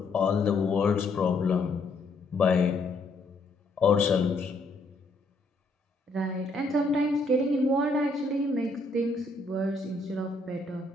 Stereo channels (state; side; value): quieter; right; 3.1 dB